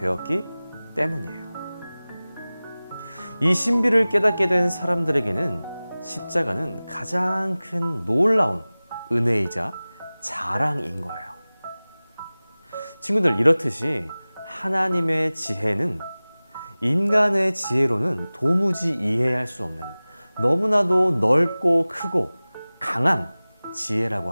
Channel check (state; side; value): inverted; both; correlation -0.99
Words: 때문이에요. 이 신비를 깨닫게 된 사람들에게는 십자가는 가장 큰 놀라운 은혜이자 자랑인 거예요. 친구들, 이렇듯이 하나님의 지혜는 인간의 지혜로는 도무지 이해할 수 없는 너무나도 넓고 크고 강한 지혜라고